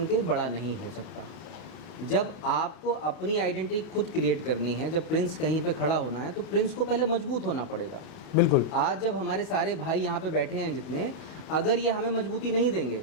के बड़ा नहीं हो सकता। जब आपको अपनी आइडेंटिटी खुद क्रिएट करनी है, जब प्रिंस कहीं पे खड़ा होना है, तो प्रिंस को पहले मजबूत होना पड़ेगा। बिल्कुल। आज जब हमारे सारे भाई यहाँ पे बैठे हैं जितने, अगर ये हमें मजबूती नहीं देंगे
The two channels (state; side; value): late; right; 32 ms